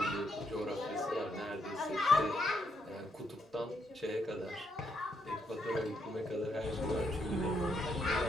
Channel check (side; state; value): both; normal; correlation 0.77